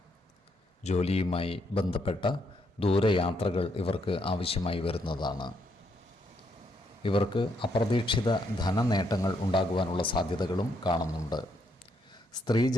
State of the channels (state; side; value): normal; both; correlation 0.75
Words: ജോലിയുമായി ബന്ധപ്പെട്ട ദൂരയാത്രകൾ ഇവർക്ക് ആവശ്യമായി വരുന്നതാണ്. ഇവർക്ക് അപ്രതീക്ഷിത ധനനേട്ടങ്ങൾ ഉണ്ടാകുവാനുള്ള സാധ്യതകളും കാണുന്നുണ്ട്.